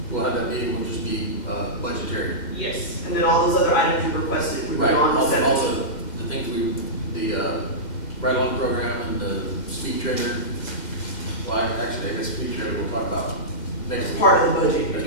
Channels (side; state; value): right; late; 2.0 ms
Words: we'll have that meeting, will just be budgetary. Yes. And then all those other items you requested would be Right, on the all 17th. the things the ride-along program and the speed trailer. Well, actually, I guess speed trailer we'll talk about next. As part of the budget. As